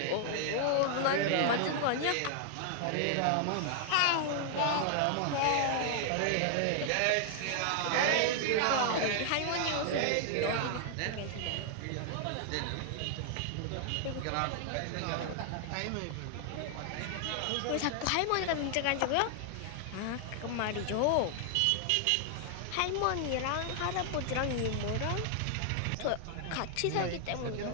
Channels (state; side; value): different; both; correlation 0.00